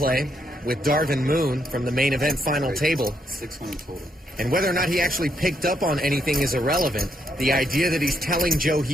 with Darvin Moon from the main event final table. 600 total. And whether or not he actually picked up on anything is irrelevant. The idea that he's telling Joe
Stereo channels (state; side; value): normal; both; correlation 0.76